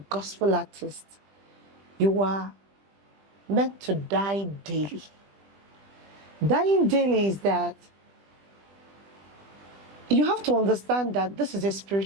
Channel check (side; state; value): left; late; 20 ms